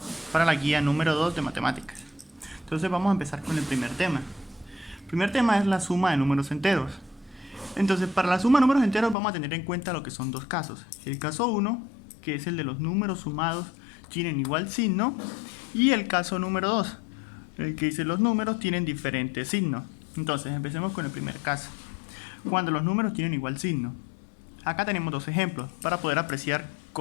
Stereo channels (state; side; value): drops out; right; at 9.2 s